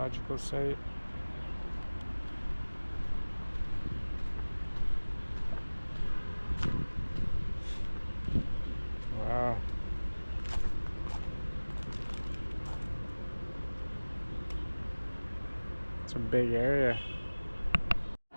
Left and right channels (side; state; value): both; inverted; correlation -1.00